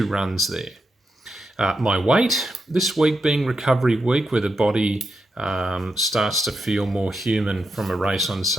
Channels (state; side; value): normal; both; correlation 0.85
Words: runs there. My weight, this week being recovery week where the body starts to feel more human from a race on